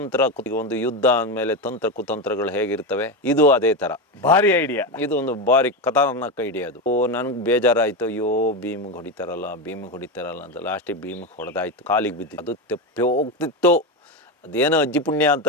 ಒಂದು ಯುದ್ಧ ಅಂದಮೇಲೆ ತಂತ್ರ ಕುತಂತ್ರಗಳು ಹೇಗಿರ್ತವೆ, ಇದು ಅದೇ ತರ ಭಾರಿ ಐಡಿಯಾ. ಇದು ಒಂದು ಭಾರಿ ಖತರ್ನಾಕ್ ಐಡಿಯಾ ಅದು. ನನ್ಗೆ ಬೇಜಾರಾಯ್ತು, ಅಯ್ಯೋ ಭೀಮಿಗೆ ಹೊಡಿತಾರಲ್ಲ ಅಂತ. ಲಾಸ್ಟಿಗೆ ಭೀಮಿಗೆ ಹೊಡೆದಾಯ್ತು, ಕಾಲಿಗೆ ಬಿದ್ದಿತ್ತು. ಅದು ತೆಪ್ಪಿ ಹೋಗ್ತಿತ್ತು. ಅದೇನೋ ಅಜ್ಜಿ ಪುಣ್ಯ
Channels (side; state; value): both; normal; correlation 0.15